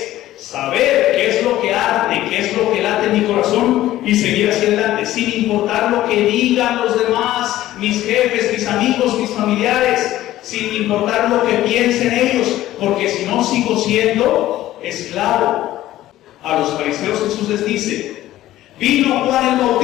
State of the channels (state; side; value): quieter; right; 14.6 dB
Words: saber qué es lo que arde, qué es lo que late en mi corazón y seguir hacia adelante, sin importar lo que digan los demás, mis jefes, mis amigos, mis familiares, sin importar lo que piensen ellos, porque si no sigo siendo esclavo. A los fariseos Jesús les dice, vino Juan el